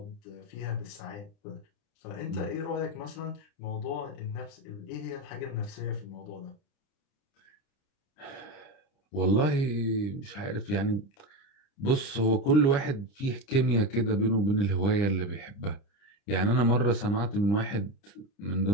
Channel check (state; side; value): late; right; 30 ms